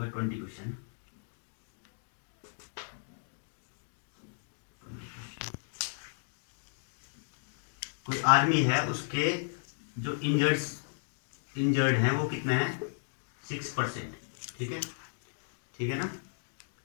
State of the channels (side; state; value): right; silent; digital silence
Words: 20 क्वेश्चन। कोई आर्मी है, उसके जो इंजर्ड हैं वो कितने हैं 6%, ठीक है, ठीक है ना।